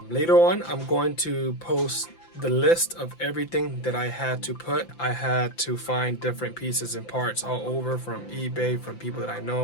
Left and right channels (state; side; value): late; right; 5.9 ms